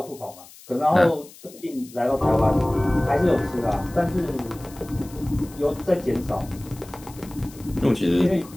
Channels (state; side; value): noise; left; hiss, 21 dB below the sound